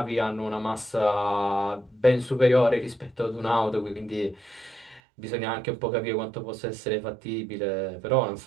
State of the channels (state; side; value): drops out; left; at 5.0 s